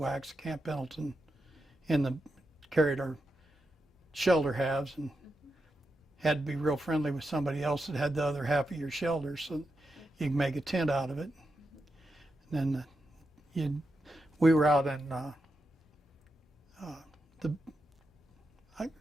at Camp Pendleton, carried our shelter halves, and had to be real friendly with somebody else that had the other half of your shelter so you can make a tent out of it. And then we were out in the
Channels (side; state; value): both; normal; correlation 0.87